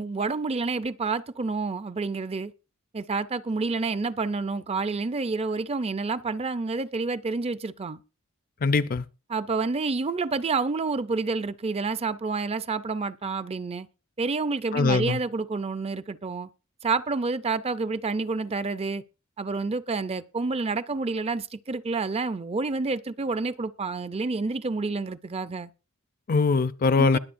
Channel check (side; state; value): both; normal; correlation 0.43